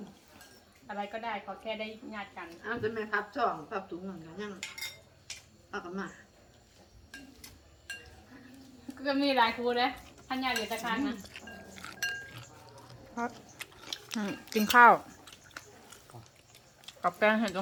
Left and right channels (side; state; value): both; identical; correlation 1.00